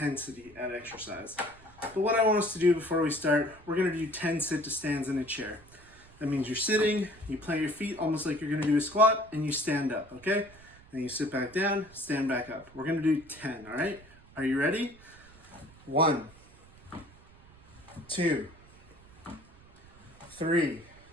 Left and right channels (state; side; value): noise; right; rumble, 24 dB below the sound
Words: at exercise. But what I want us to do before we start, we're going to do 10 sit-to-stands in a chair. That means you're sitting, you plant your feet almost like you're going to do a squat, and you stand up, okay? And you sit back down, stand back up. We're going to do 10, all right? Are you ready? 1, 2, 3,